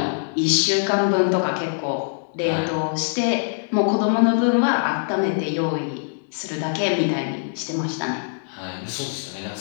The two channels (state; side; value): silent; right; digital silence